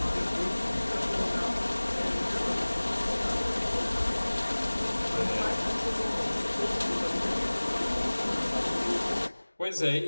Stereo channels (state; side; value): inverted; both; correlation -1.00